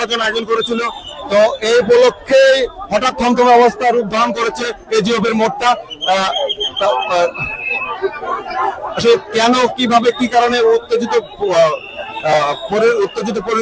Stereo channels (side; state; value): both; identical; correlation 1.00